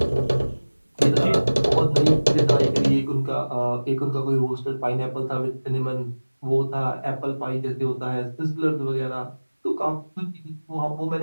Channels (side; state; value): both; inverted; correlation -1.00